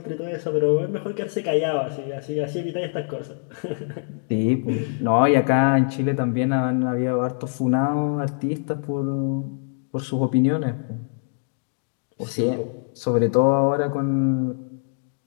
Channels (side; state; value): right; silent; digital silence